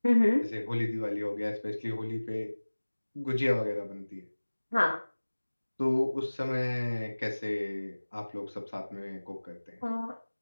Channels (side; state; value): both; inverted; correlation -1.00